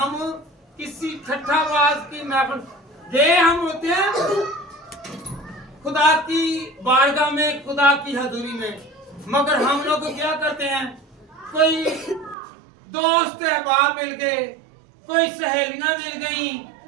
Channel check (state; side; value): drops out; left; at 12.4 s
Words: किसी ठट्ठाबाज की महफिल। ये हम होते हैं खुदा की बारगाह में, खुदा की हजूरी में, मगर हम लोग क्या करते हैं? कोई दोस्त अहबाब मिल गए, कोई सहेलियां मिल गई,